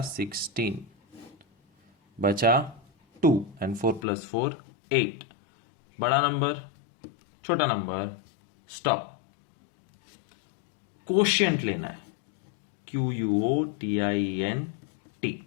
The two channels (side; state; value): right; drops out; at 4.0 s